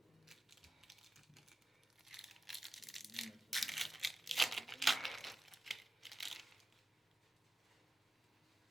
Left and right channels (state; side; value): normal; both; correlation 0.94